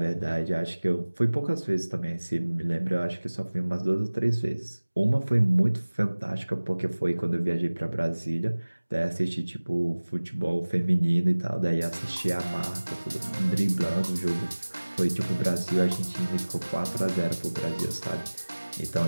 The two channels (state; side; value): inverted; both; correlation -1.00